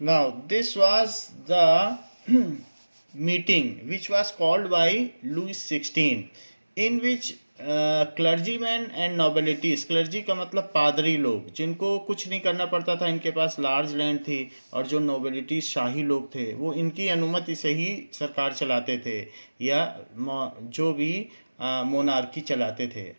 Now this was the meeting which was called by Louis 16, in which clergyman and nobilities, clergy का मतलब पादरी लोग, जिनको कुछ नहीं करना पड़ता था, इनके पास लार्ज लैंड थी, और जो नोबिलिटीज शाही लोग थे वो इनकी अनुमति से ही सरकार चलाते थे या जो भी मोनार्की चलाते थे।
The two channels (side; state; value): both; inverted; correlation -1.00